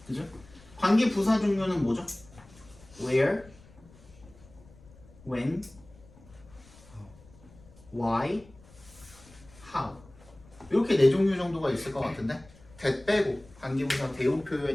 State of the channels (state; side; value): noise; left; rumble, 24 dB below the sound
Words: 그죠? 관계 부사 종류는 뭐죠? where, when, why, how. 이렇게 네 종류 정도가 있을 것 같은데 that 빼고 관계 부사 대우